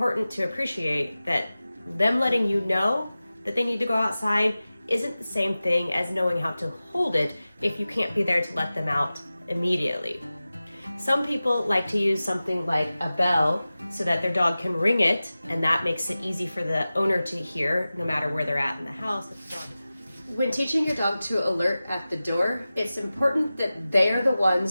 to appreciate that them letting you know that they need to go outside isn't the same thing as knowing how to hold it if you can't be there to let them out immediately. Some people like to use something like a bell so that their dog can ring it, and that makes it easy for the owner to hear no matter where they're at in the house. When teaching your dog to alert at the door, it's important that they are the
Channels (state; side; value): inverted; both; correlation -0.96